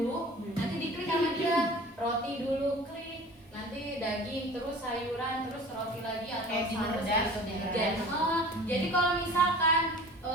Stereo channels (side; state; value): both; normal; correlation 0.42